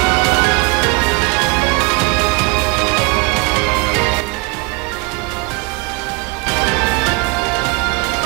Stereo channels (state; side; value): quieter; left; 27.2 dB